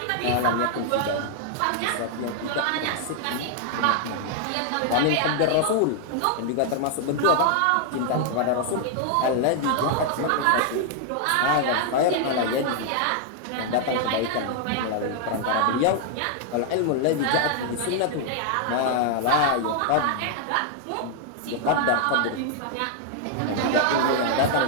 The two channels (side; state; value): both; different; correlation 0.00